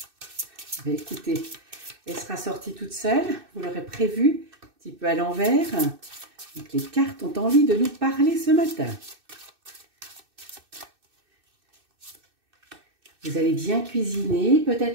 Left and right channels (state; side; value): late; left; 2.6 ms